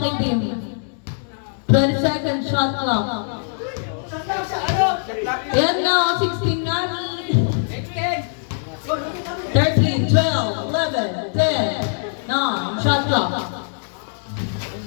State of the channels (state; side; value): silent; right; digital silence